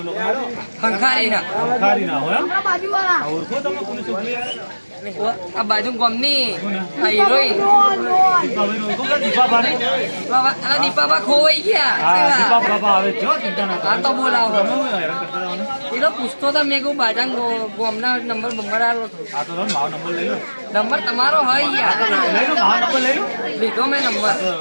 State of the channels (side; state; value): both; inverted; correlation -1.00